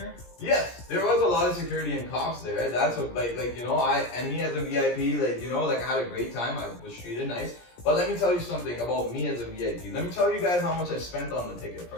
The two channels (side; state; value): right; late; 17 ms